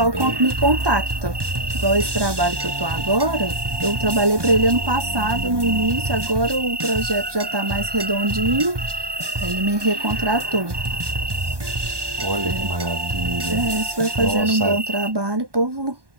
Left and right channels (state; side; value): late; left; 1.2 ms